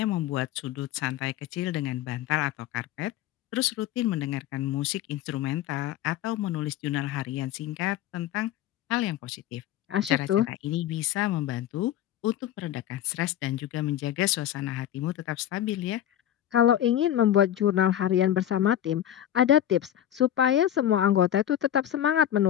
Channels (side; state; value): right; quieter; 11.5 dB